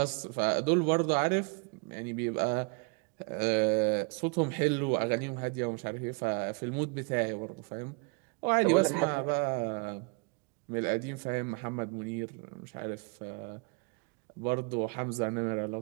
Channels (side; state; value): left; quieter; 29.4 dB